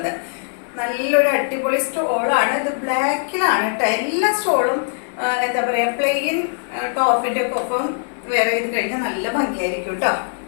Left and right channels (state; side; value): silent; right; 64 dB below the other